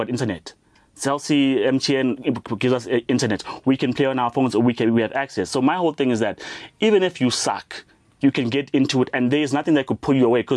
internet. Celsi, MTN gives us internet. We can play on our phones, or we have access. So my whole thing is that even if you suck, you can get into it, and there's nothing that could pull you away.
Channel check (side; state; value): both; identical; correlation 1.00